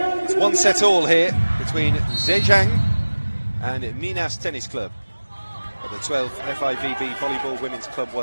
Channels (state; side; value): inverted; both; correlation -1.00